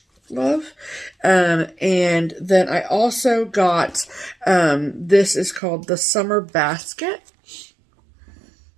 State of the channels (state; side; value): drops out; left; at 5.6 s